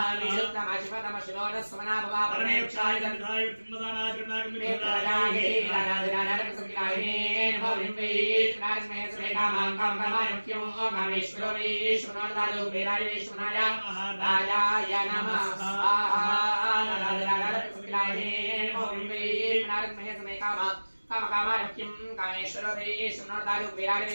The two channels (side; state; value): both; inverted; correlation -1.00